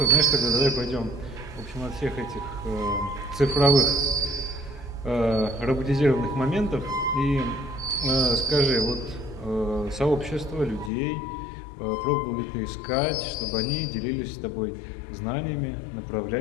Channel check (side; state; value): right; drops out; at 10.9 s